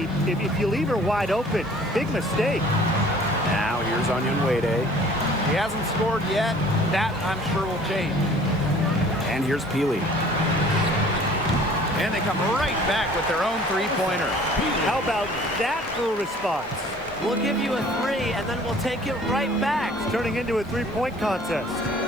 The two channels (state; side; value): noise; right; hiss, 29 dB below the sound